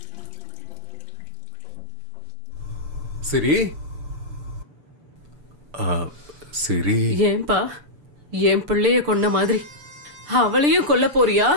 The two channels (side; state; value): left; late; 6.8 ms